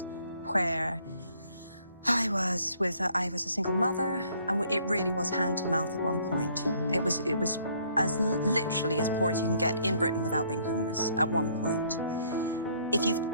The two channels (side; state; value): both; inverted; correlation -0.63